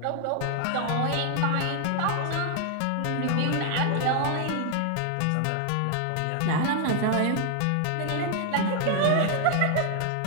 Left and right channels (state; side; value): different; both; correlation 0.00